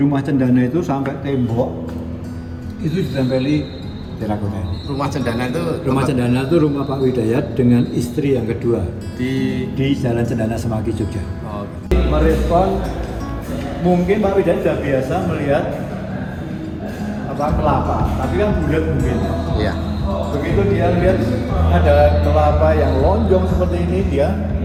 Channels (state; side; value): identical; both; correlation 1.00